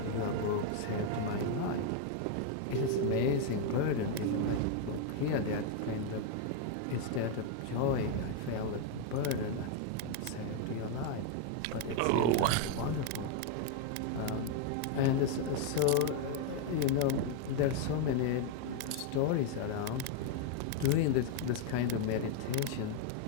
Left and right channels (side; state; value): both; different; correlation 0.00